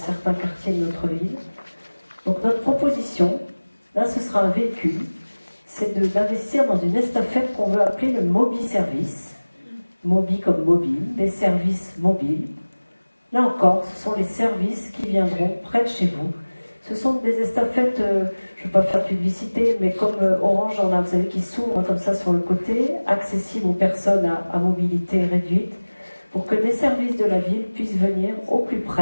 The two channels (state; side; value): inverted; both; correlation -1.00